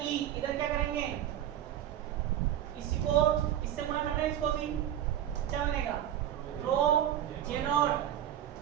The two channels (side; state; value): left; quieter; 11.2 dB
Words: ई, इधर क्या करेंगे इसी को इससे गुणा कर रहे हैं, इसको भी क्या बनेगा rho J naught